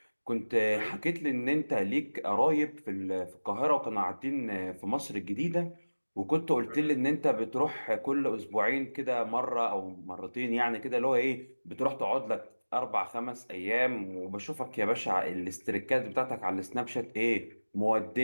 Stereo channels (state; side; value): inverted; both; correlation -1.00